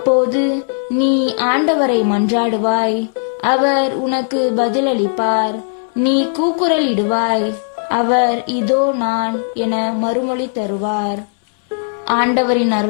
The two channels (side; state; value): right; silent; 66 dB below the other